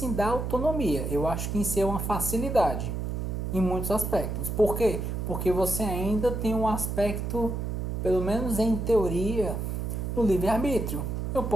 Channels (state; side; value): noise; right; hum, 3 dB below the sound